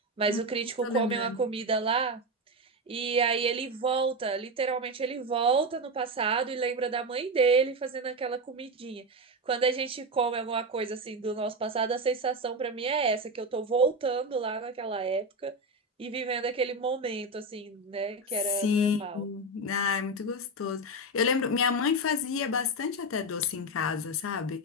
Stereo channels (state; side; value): normal; both; correlation 0.14